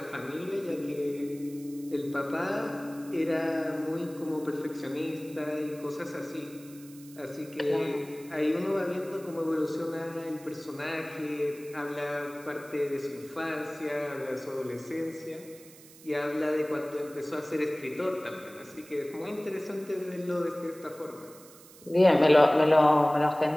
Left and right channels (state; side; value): noise; right; hiss, 21 dB below the sound